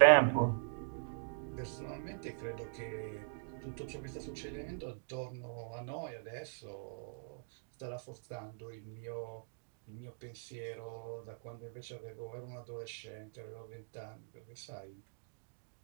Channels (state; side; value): silent; left; digital silence